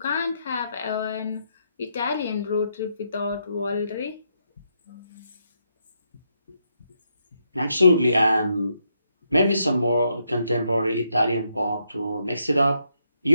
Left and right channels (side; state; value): both; inverted; correlation -0.79